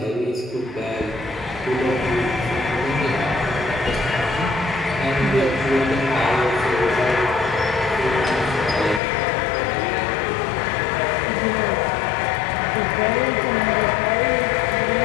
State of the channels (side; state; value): right; drops out; at 9.0 s